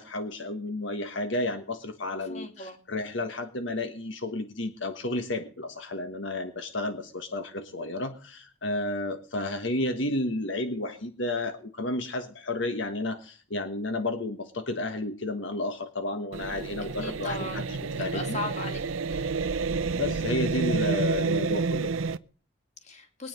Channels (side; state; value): both; normal; correlation 0.08